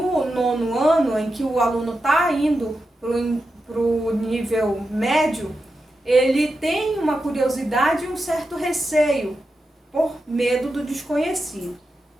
nono ano, em que o aluno está indo para o nível médio, ele tem uma curiosidade e um certo receio, por medo do desconhecido.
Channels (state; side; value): normal; both; correlation 0.89